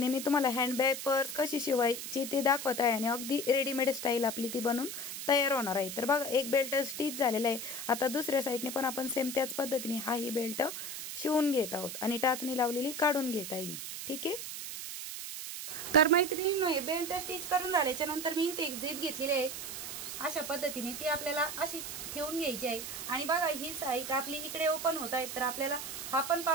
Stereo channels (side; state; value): right; noise; hiss, 7 dB below the sound